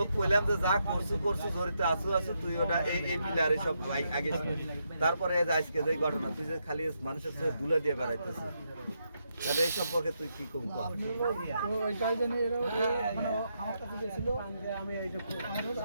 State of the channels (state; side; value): inverted; both; correlation -0.81